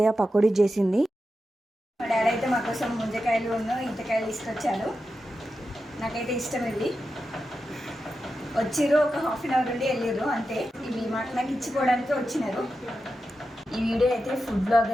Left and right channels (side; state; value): both; normal; correlation 0.90